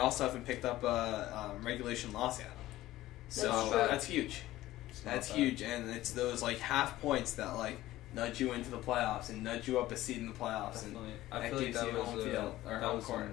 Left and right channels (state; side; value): quieter; right; 15.8 dB